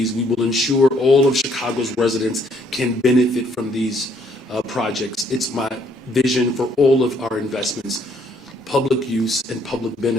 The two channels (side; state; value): both; normal; correlation 0.67